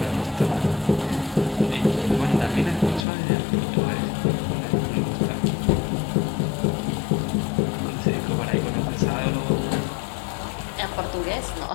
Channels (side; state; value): right; drops out; at 3.1 s